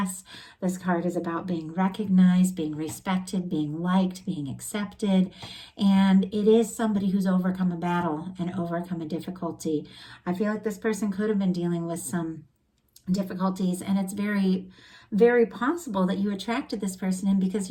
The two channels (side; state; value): both; identical; correlation 1.00